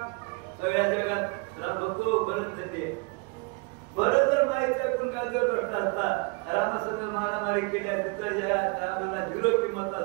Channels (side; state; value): left; quieter; 30.3 dB